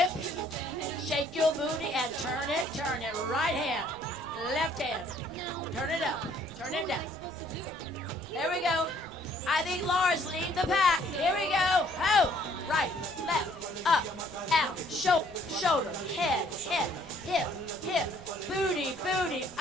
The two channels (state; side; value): noise; right; rumble, 21 dB below the sound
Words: Shake your booty and turn it. Turn it. Right hand, left hand. Turn it up. Turn it down. Here we go. I think Laura's leading the pack. Here we go. Ho! Right, left, up, out, shoulder, head, hip, booty,